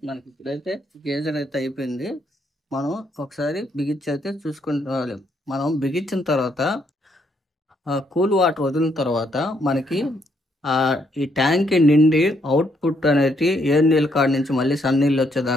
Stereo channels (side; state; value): both; normal; correlation 0.73